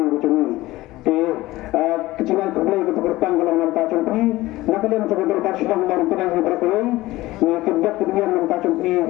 cumi kecingan kebeli ke bertang kalau nampak cumi nak kalian coba berkat sedang baru kena berkali ni kedap kemudian nampak cumi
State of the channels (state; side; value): quieter; right; 18.1 dB